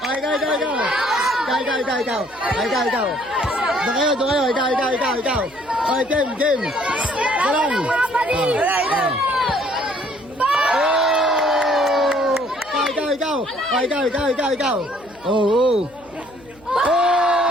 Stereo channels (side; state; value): right; noise; hum, 28 dB below the sound